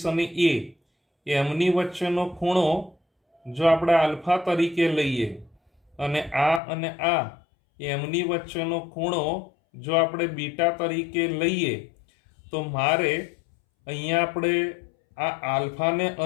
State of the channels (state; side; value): drops out; right; at 6.6 s